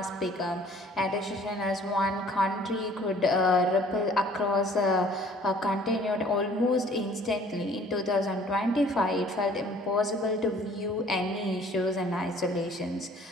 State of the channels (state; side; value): normal; both; correlation 0.54